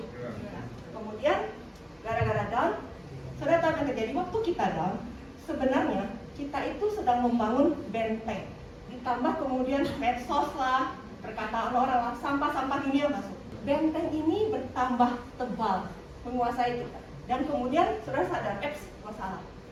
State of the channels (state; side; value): identical; both; correlation 1.00